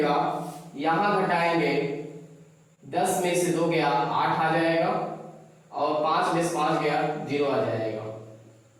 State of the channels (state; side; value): identical; both; correlation 1.00